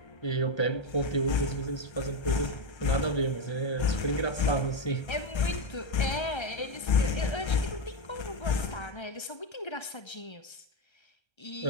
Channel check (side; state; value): right; late; 1.3 ms